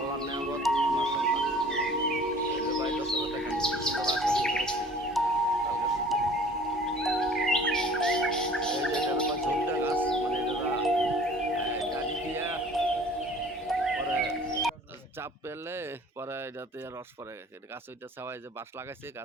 নেয়ামত, মাশাআল্লাহ। এই যে ভাই দর্শক দেখেন কি সুন্দর আকৃতি করেছে তাল গাছটা। এই যে এটা হলো ঝুলটা গাছ, মানে এটা গাড়ি দিয়া পরে চাপ পেলে পরে এটাতে রস পরে এটা গাছ, ওইটা ছাওয়াই যে বাঁশ লাগাইছে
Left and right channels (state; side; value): normal; both; correlation 0.49